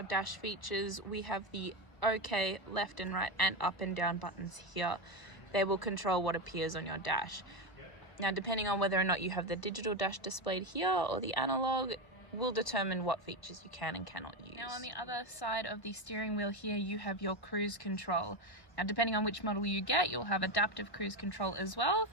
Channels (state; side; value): late; right; 1.0 ms